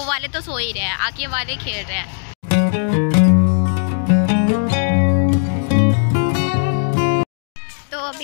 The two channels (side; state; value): right; silent; digital silence